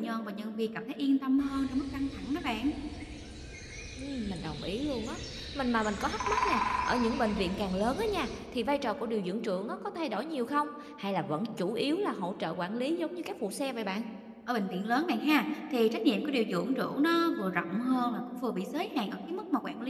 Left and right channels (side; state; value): both; identical; correlation 1.00